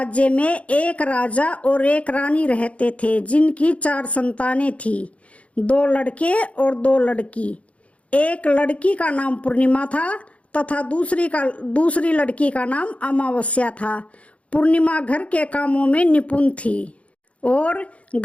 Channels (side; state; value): right; late; 0.064 ms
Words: में एक राजा और एक रानी रहते थे, जिनकी 4 संतानें थी, 2 लड़के और 2 लड़की। एक लड़की का नाम पूर्णिमा था तथा दूसरी लड़की का नाम अमावस्या था। पूर्णिमा घर के कामों में निपुण थी और